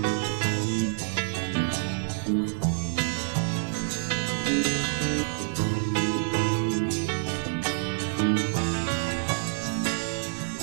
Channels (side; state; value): left; silent; digital silence